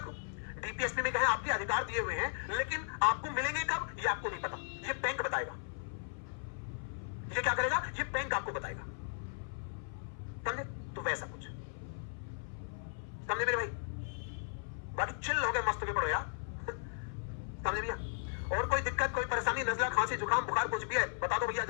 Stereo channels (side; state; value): right; silent; 54 dB below the other